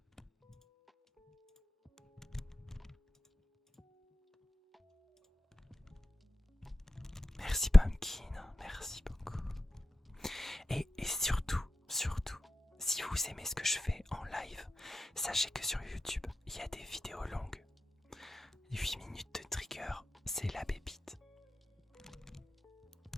Merci Pumpkin, merci beaucoup. Et surtout, si vous aimez ce que je fais en live, sachez que sur YouTube, il y a des vidéos longues. 8 minutes de trigger, c'est la pépite.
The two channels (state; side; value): normal; both; correlation 0.94